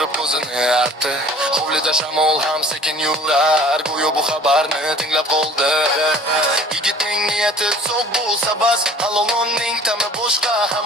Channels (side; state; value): both; normal; correlation 0.48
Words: ko'zini artdi. Hovlida shamol ham sekin yurar, go'yo bu xabarni tinglab qoldi. Yigitning niyati so'q bo'lsa bas, halolonning ta'mi boshqa